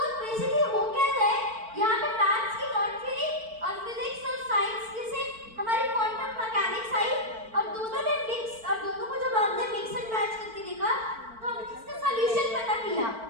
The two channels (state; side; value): late; left; 4.5 ms